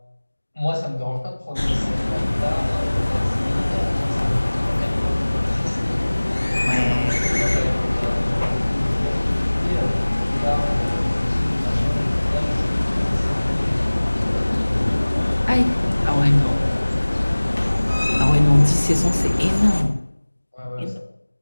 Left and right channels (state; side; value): inverted; both; correlation -1.00